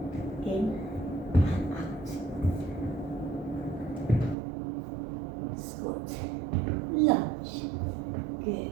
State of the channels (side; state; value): left; drops out; at 4.4 s